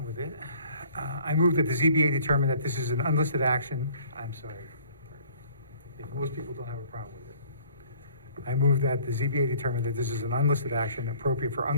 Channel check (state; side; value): inverted; both; correlation -0.55